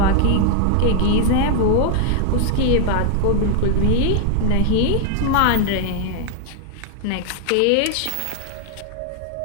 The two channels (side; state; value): both; different; correlation 0.00